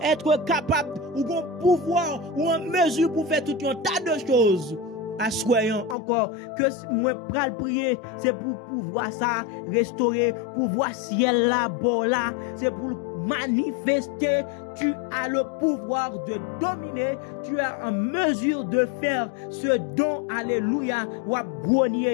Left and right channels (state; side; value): drops out; right; at 6.0 s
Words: être capable ou un pouvoir ou en mesure pour faire tout un tas de choses. Assoyons encore que moi pral prier, c'est pour pouvoir ça restaurer, pour voir ciel là, bas là, c'est pour manifester. Tu as le pouvoir de dominer, tu es en mesure de faire ce don, alléluia, ou à